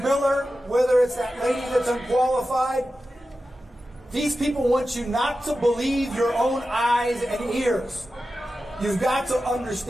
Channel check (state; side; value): normal; both; correlation 0.93